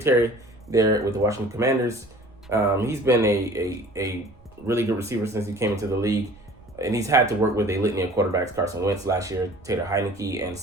there with the Washington Commanders. He's been a really good receiver since he came into the league, and he's had to work with a litany of quarterbacks: Carson Wentz last year, Taylor Heineke, and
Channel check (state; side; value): noise; right; rumble, 26 dB below the sound